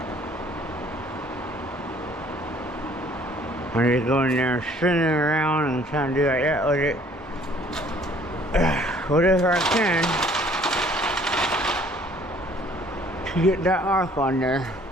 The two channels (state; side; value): normal; both; correlation 0.58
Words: I'm just going there and spinning around and trying to do like that with it. Whatever I can to get that arc on there.